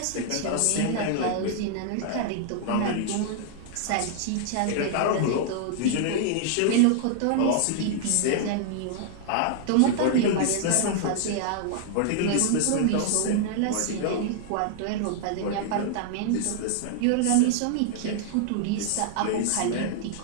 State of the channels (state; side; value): different; both; correlation -0.01